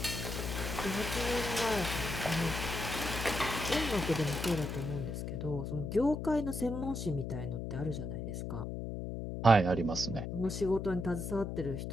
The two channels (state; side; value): noise; left; hum, 5 dB below the sound